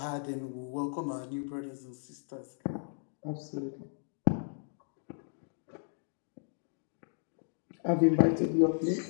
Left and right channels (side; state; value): right; silent; digital silence